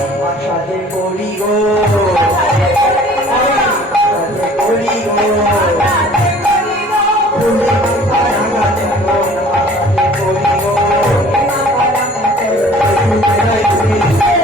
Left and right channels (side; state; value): both; normal; correlation 0.50